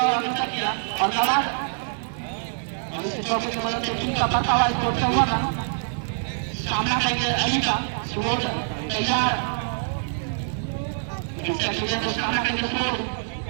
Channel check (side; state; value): left; silent; digital silence